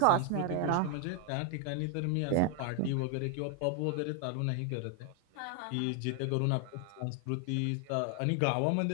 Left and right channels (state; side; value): different; both; correlation 0.00